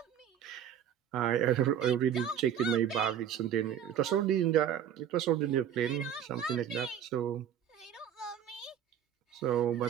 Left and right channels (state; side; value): quieter; left; 9.5 dB